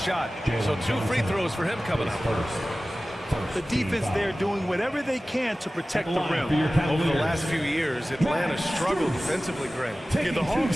So 2 free throws for him coming up. The defense there doing whatever they can to protect the rim. Over the last few years, Atlanta struggled defensively, Grant. Yeah, the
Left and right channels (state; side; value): normal; both; correlation 0.96